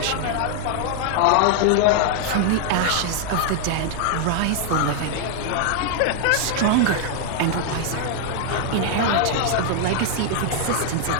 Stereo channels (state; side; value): different; both; correlation 0.00